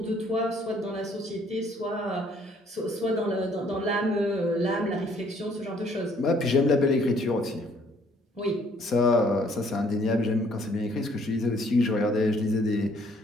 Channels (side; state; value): both; normal; correlation 0.63